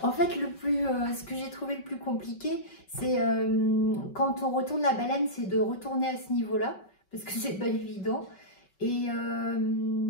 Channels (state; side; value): late; right; 5.3 ms